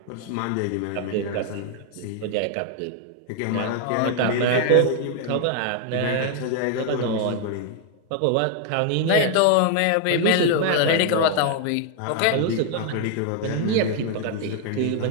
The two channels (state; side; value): different; both; correlation 0.00